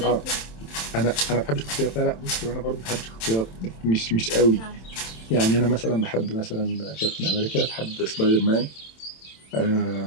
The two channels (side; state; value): right; late; 27 ms